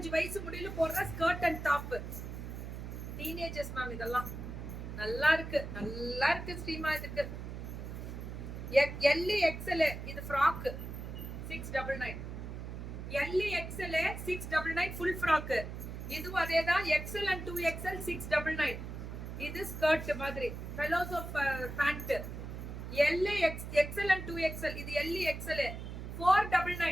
வயசு முடியல போடுற skirt and top. Teenagers ma'am இதெல்லாம் நல்லா இருக்கு ஸ்ரீமா. இதுக்கு எல் XL இது frock 699. L XL 699 full frock. இதுவும் அதேதான். XL and 2XL 699. இது ஸ்கர்ட் மாதிரி fellows of pant. L XL and 2XL இது எல் XL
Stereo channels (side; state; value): right; noise; hum, 8 dB below the sound